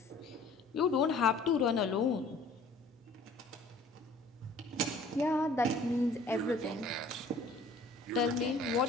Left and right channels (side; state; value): right; quieter; 3.0 dB